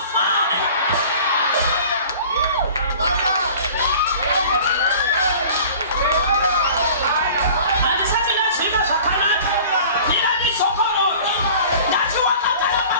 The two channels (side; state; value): both; inverted; correlation -0.45